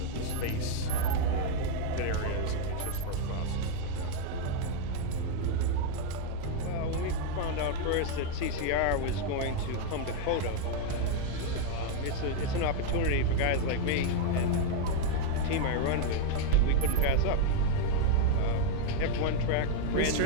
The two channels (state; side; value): different; both; correlation 0.01